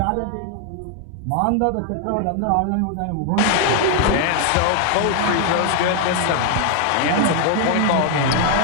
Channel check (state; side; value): different; both; correlation 0.00